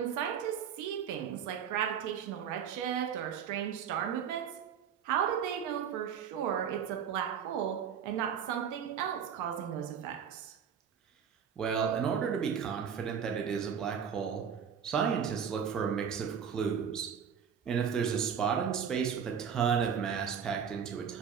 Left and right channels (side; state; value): left; quieter; 7.6 dB